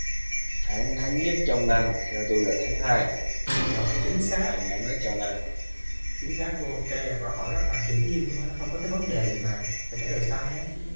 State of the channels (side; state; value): both; inverted; correlation -1.00